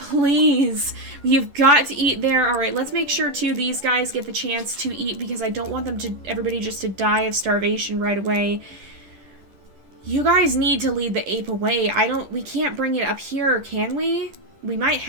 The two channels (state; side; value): late; left; 11 ms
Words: You've got to eat there. Alright, let's make sure, too, these guys get the chance to eat because I don't want them to, everybody just to die of starvation right away. You guys need to lead the ape away. We can't bring it up here, can we? We might